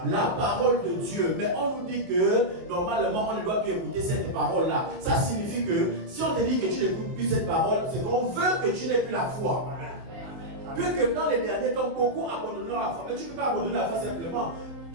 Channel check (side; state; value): left; late; 23 ms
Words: La parole de Dieu. Mais on nous dit que normalement, on ne doit plus écouter cette parole-là. Ça signifie que si on te dit que tu n'écoutes plus cette parole, c'est qu'on veut que tu n'aies plus la foi. Puisque dans les derniers temps, beaucoup abandonneront la foi. Mais tu ne peux pas abandonner la foi simplement.